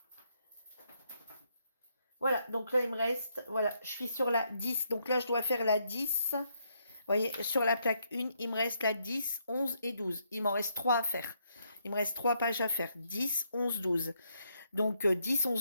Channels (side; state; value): both; inverted; correlation -0.75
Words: Voilà, donc là il me reste, voilà, je suis sur la 10. Donc là je dois faire la 10. Vous voyez, sur la plaque 1, il me reste la 10, 11 et 12. Il m'en reste 3 à faire. Il me reste 3 pages à faire. 10, 11, 12. Donc 10,